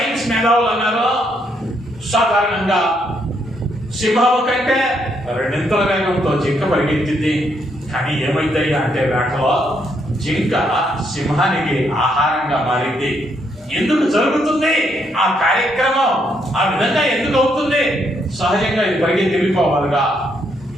మేధావులు అన్నారు సాధారణంగా సింహము కంటే రెండింతల వేగంతో జింక పరిగెత్తింది. కానీ ఏమైందయ్యా అంటే వేటలో జింక సింహానికి ఆహారంగా మారింది. ఎందుకు జరుగుతుంది ఆ కార్యక్రమం? ఆ విధంగా ఎందుకు అవుతుంది? సహజంగా ఇది పరిగెత్తి వెళ్ళిపోవాలిగా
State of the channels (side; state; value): both; normal; correlation 0.74